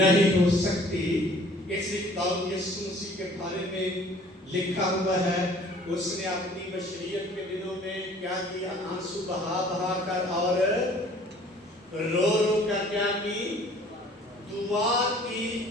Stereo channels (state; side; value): normal; both; correlation 0.53